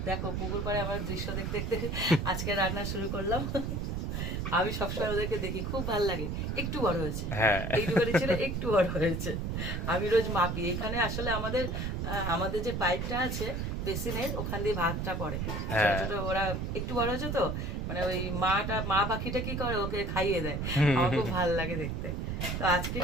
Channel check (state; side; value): noise; right; rumble, 2 dB below the sound